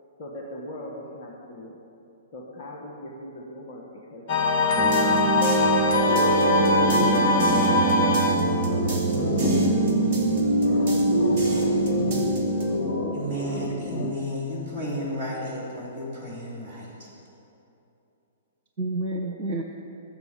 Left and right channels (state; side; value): inverted; both; correlation -0.38